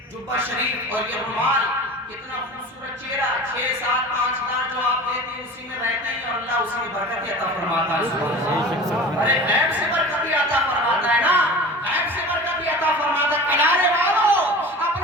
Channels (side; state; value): both; normal; correlation 0.36